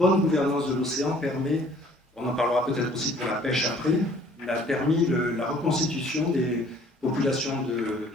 gouvernance de l'océan permet, on en parlera peut-être aussi pour la pêche après, a permis la reconstitution des populations de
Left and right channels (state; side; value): normal; both; correlation 0.56